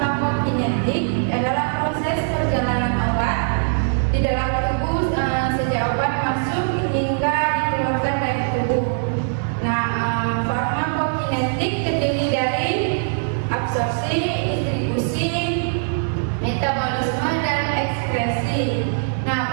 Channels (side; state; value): left; silent; 56 dB below the other